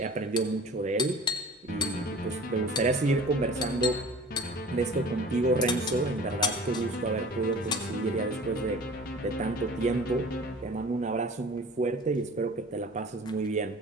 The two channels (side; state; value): both; normal; correlation 0.42